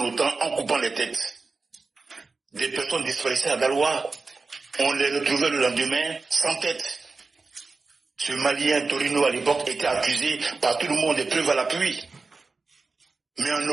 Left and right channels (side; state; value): left; quieter; 4.0 dB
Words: coupant les têtes. Des personnes disparaissaient à Dalois, on les retrouvait le lendemain sans tête. Ce Malien Torino à l'époque était accusé par tout le monde des preuves à l'appui. Mais en